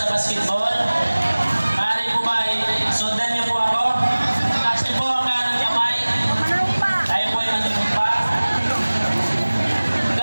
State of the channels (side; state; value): both; inverted; correlation -1.00